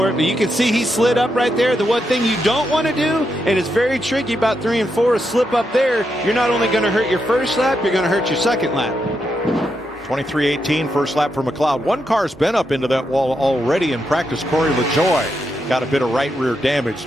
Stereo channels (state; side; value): normal; both; correlation 0.83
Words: it. But you can see he slid up right there. The one thing you don't want to do, and it's very tricky about 3 and 4, is slip up there. You're not only going to hurt your 1st lap, you're going to hurt your 2nd lap. 23:18 first lap for McLeod. One car's been up into that wall already in practice. Corey LaJoy got a bit of right rear damage.